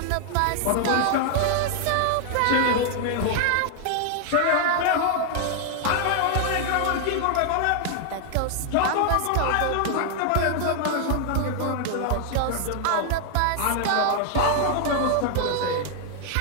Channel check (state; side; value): different; both; correlation 0.00